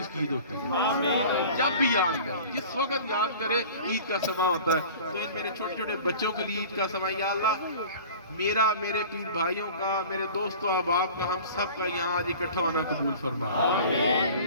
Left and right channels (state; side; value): inverted; both; correlation -0.41